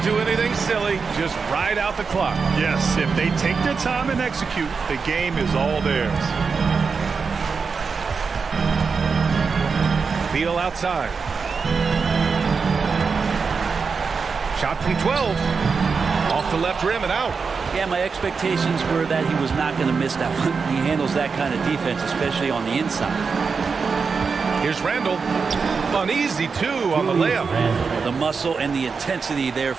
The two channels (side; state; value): left; quieter; 5.2 dB